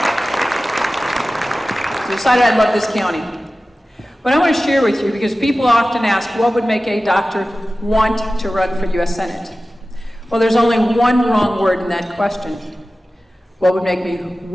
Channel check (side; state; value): both; normal; correlation 0.96